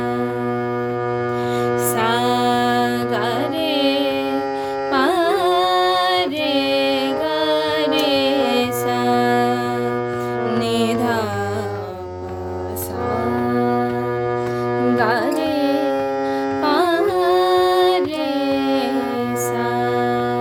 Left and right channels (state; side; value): identical; both; correlation 1.00